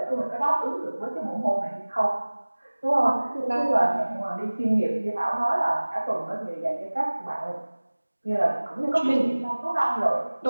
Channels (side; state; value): both; inverted; correlation -1.00